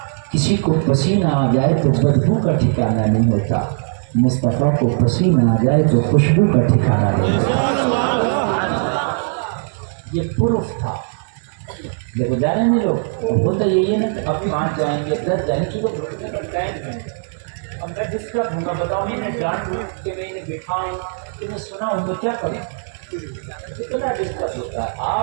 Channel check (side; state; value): left; silent; 66 dB below the other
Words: کسی کو پسینہ آ جائے تو بدبو کا ٹھکانہ نہیں ہوتا، مصطفیٰ کو پسینہ آ جائے تو خوشبو کا ٹھکانہ نہیں ہوتا۔ یہ پروف تھا۔ دیکھو جا رہے ہیں لوگ، ہوتا یہی ہے نا کہ اب 5 جائیں گے 10 جائیں گے، اب میں ڈسٹرب ہوں گا، بتاؤ میں جان دوں کہ میں انہیں بٹھاؤں کہ میں سنا ہوں تو کیا کروں؟ کتنا ڈسٹرب ہوتا ہے۔